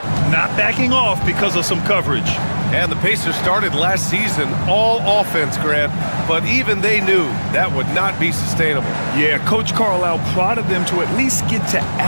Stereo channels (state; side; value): inverted; both; correlation -1.00